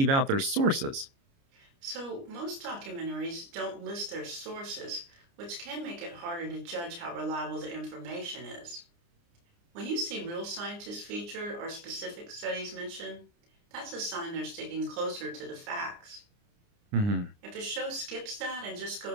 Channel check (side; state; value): left; late; 29 ms